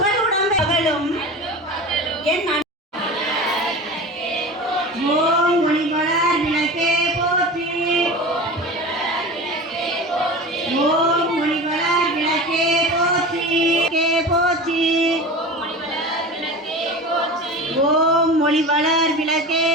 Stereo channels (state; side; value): normal; both; correlation 0.32